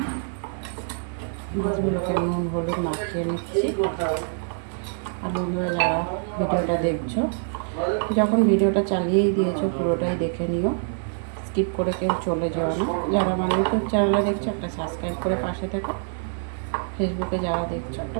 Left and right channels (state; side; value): silent; left; digital silence